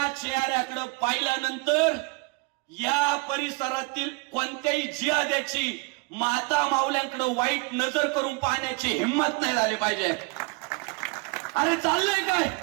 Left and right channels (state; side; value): quieter; left; 29.1 dB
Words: चेहऱ्याकडे पाहिल्यानंतर या परिसरातील कोणत्याही जिहाद्याची माता माऊल्यांकडे वाईट नजर करून पाहण्याची हिंमत नाही झाली पाहिजे. अरे चाललंय काय?